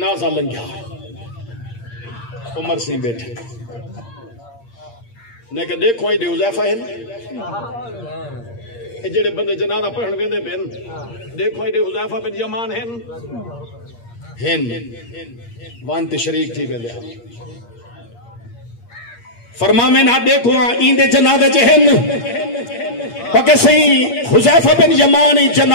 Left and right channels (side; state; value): right; late; 8.6 ms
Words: لنگیا عمر سی بیٹھے نے کہ دیکھو آئی دے حذیفہ ہیں جڑے بندے جنازہ پڑھن ویندے پن دیکھو آئی دے حذیفہ بن یمان ہیں وانت شریک تھی بیلے فرما میں نہ دیکھو ایندے جنازے جہن پکے صحیح حذیفہ بن یمان